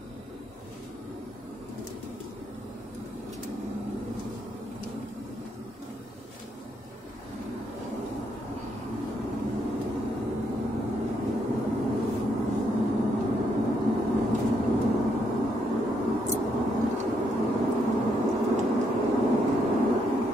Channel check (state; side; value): normal; both; correlation 0.75